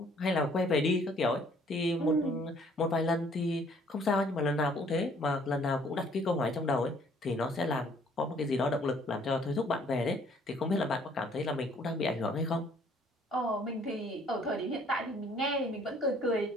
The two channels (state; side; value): normal; both; correlation 0.60